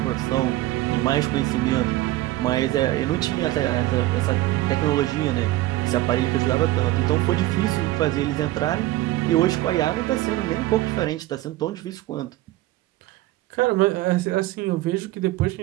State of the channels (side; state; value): left; quieter; 16.7 dB